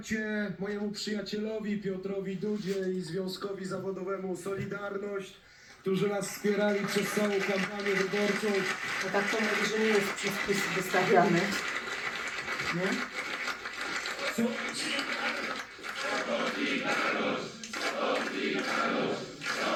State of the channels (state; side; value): identical; both; correlation 1.00